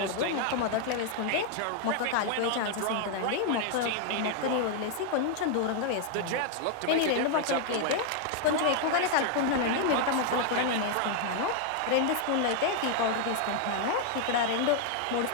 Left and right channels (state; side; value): different; both; correlation 0.00